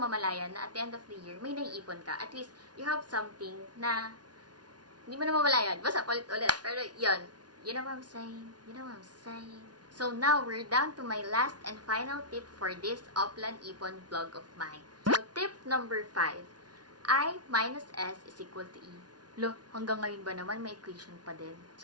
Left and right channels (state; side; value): late; left; 0.69 ms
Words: na at the end of the year, may naiipon ka. At least, you have something na hindi mo na mamalayan. Basta, ulit. Pero, yun. You know what I'm saying? You know what I'm saying? So now, we're down to my last and final tip for this OPLAN IPON vlog of mine. So tip number 5. I minus S is equal to E. Lo, hanggang ngayon ba naman may equation pa din?